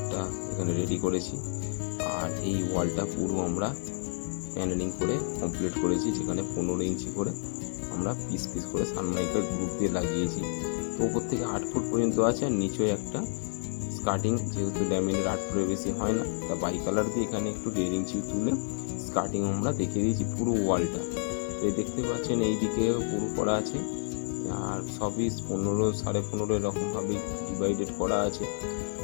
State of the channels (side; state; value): right; silent; digital silence